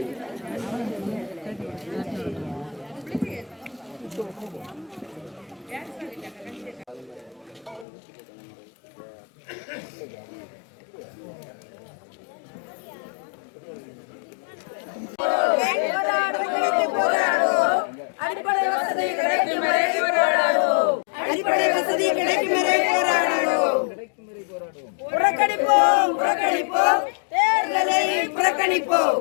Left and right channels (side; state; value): right; drops out; at 7.9 s